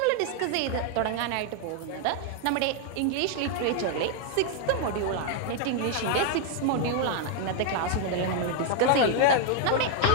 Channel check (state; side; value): different; both; correlation 0.00